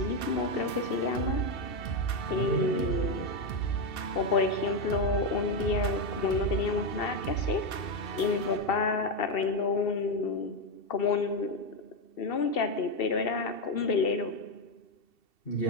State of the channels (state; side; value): late; right; 2.7 ms